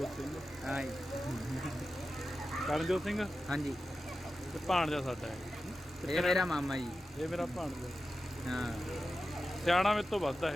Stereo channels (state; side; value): normal; both; correlation 0.92